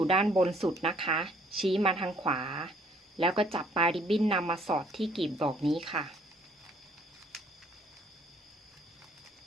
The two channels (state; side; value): normal; both; correlation 0.61